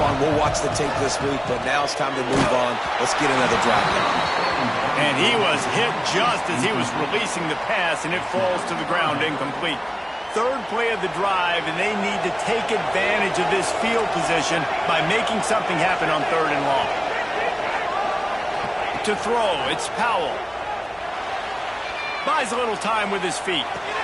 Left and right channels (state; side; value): identical; both; correlation 1.00